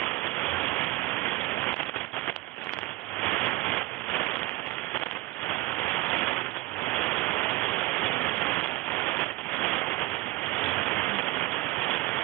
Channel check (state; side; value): quieter; left; 19.3 dB